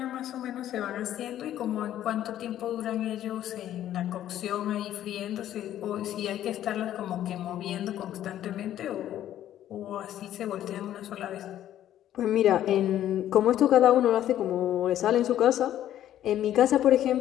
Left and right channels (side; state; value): right; quieter; 11.9 dB